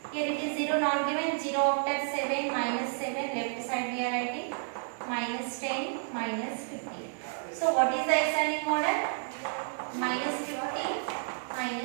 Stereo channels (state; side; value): silent; left; digital silence